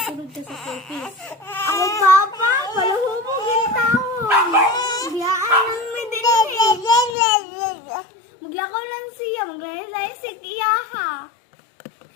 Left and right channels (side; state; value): right; drops out; at 7.2 s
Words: ka sa purpose. Ako papa, palahubog yung taon. Biyaan ng medinili. Maglakaw lang siya, maglalay si Kiyaha.